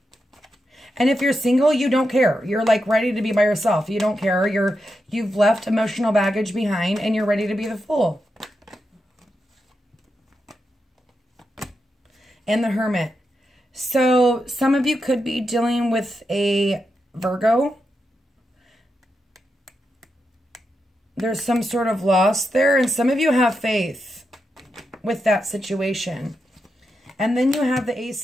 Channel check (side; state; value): both; normal; correlation 0.86